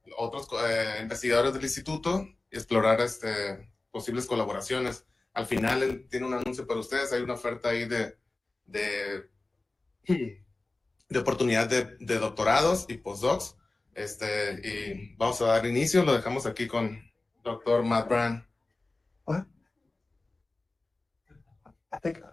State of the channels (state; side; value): quieter; right; 3.1 dB